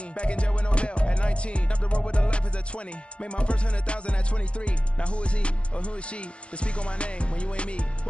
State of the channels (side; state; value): right; late; 0.059 ms